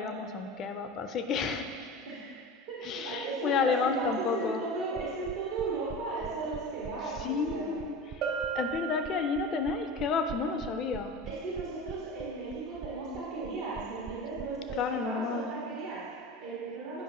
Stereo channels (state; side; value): normal; both; correlation 0.31